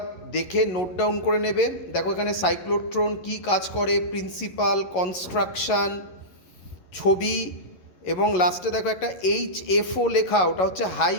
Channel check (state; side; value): late; right; 11 ms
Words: দেখে নোট ডাউন করে নেবে। দেখো এখানে সাইক্লোট্রন কী কাজ করে, প্রিন্সিপাল, কনস্ট্রাকশান, ছবি, এবং লাস্টে দেখো একটা HFO লেখা, ওটা হচ্ছে হাই